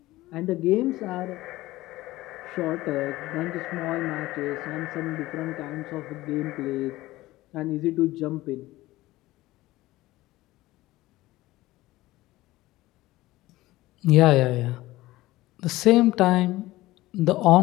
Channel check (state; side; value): quieter; right; 17.8 dB